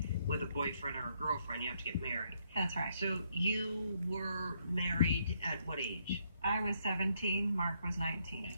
with a boyfriend or a girlfriend. You have to get married. That's right. So you were married at what age? I was 17, Mark was 19.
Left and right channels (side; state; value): both; inverted; correlation -0.73